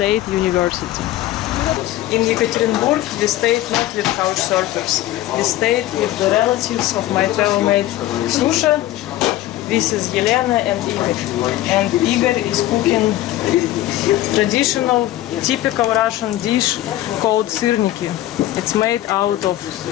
University. In Yekaterinburg we stayed not with couch surfers. We stayed with the relatives of my travel mate Susha This is Yelena and Igor. And Igor is cooking traditional, typical Russian dish called syrniki. It's made out of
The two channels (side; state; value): right; quieter; 14.8 dB